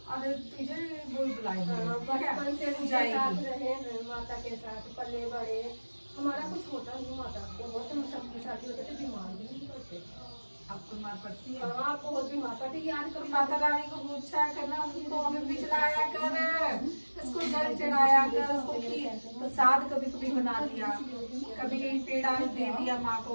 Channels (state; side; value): inverted; both; correlation -1.00